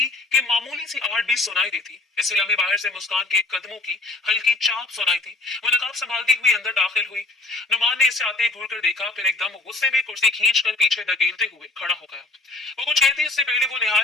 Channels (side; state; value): right; quieter; 3.1 dB